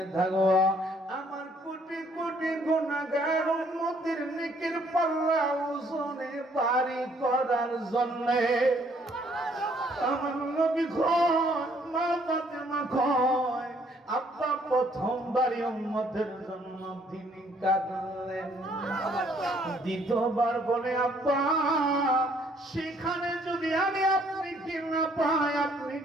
থাকবো, আমার কোটি কোটি গুনাহগার উম্মতের নেকের পাল্লা ওজনে ভারী করার জন্য। আমার নবী কয়, মা ফাতেমা কয়, আব্বা প্রথমবারই উম্মতের জন্য তিনি কাঁদলেন। দ্বিতীয়বার বলে, আব্বা সেখানে যদি আমি আপনি কি না পাই আপনি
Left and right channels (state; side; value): normal; both; correlation 0.64